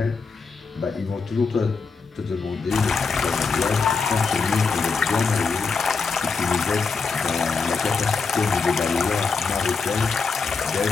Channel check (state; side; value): quieter; right; 4.8 dB